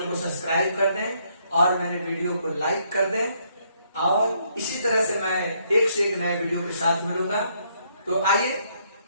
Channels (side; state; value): both; inverted; correlation -0.71